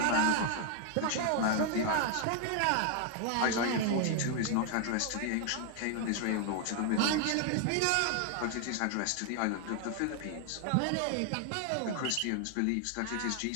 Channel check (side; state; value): both; different; correlation 0.00